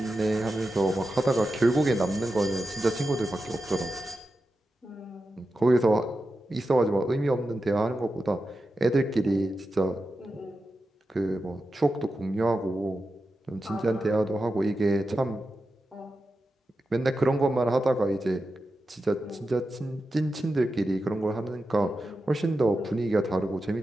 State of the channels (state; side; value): normal; both; correlation 0.90